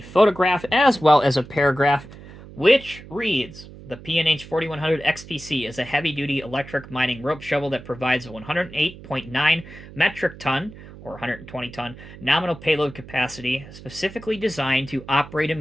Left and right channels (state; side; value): noise; right; hum, 17 dB below the sound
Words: as well as a paragraph, which reads, the P&H 4100 XPC is a heavy-duty electric mining rope shovel that provides a 108.9 metric ton, or 120 ton, nominal payload capacity, specifically designed to operate in